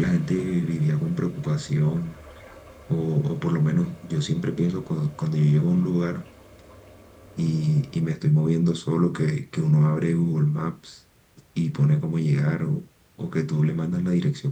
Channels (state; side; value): identical; both; correlation 1.00